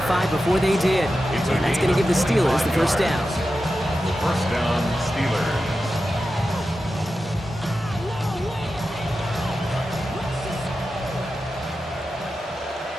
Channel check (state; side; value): normal; both; correlation 0.91